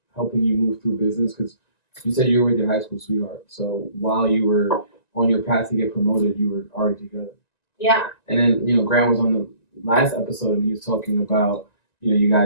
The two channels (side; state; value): right; late; 1.9 ms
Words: helping you move through business? Because you said you were with your high school sweetheart. So while you were on your path to get promoted, you were already together. Yeah. And then, Grant was on the last episode and he was talking about, you